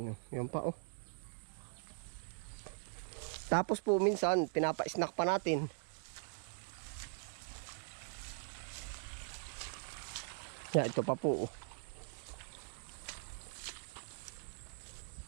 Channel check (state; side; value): silent; left; digital silence